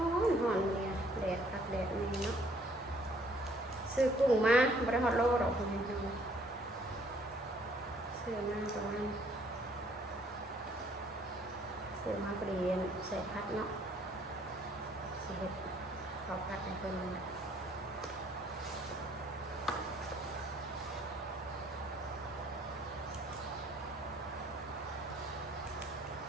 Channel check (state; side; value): normal; both; correlation 0.62